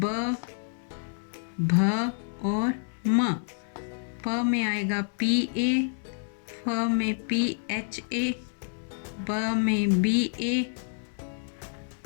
भ और म। प में आएगा पी ए, फ में पी एच ए, ब में बी ए,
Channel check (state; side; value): silent; right; digital silence